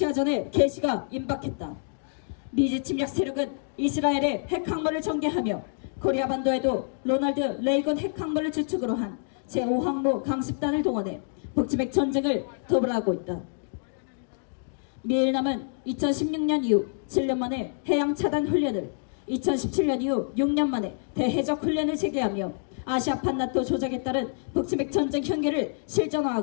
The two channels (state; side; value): silent; right; digital silence